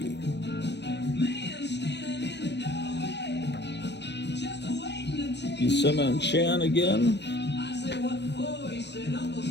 Buscema and Chan again.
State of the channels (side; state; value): right; late; 0.50 ms